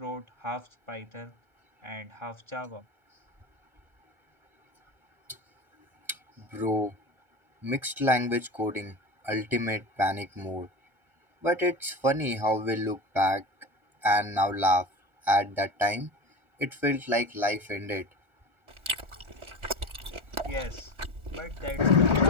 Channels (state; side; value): late; left; 1.4 ms